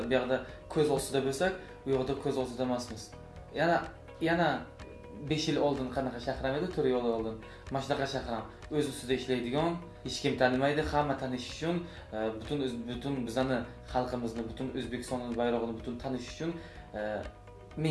bu yerda ko'z ostida bo'lsak, u yoqda ko'z ostida emasmiz. Yana 5 yil oldin qanaqa shahram edi, 4 yil oldin. Mana shunaqa shahram o'z ustida ishlaydigan, hech kim tanimaydi, hamma tanish uchun, butun bizani xalqimizni, butun O'zbekistonning bayrog'ini butun tanish uchun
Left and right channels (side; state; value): both; identical; correlation 1.00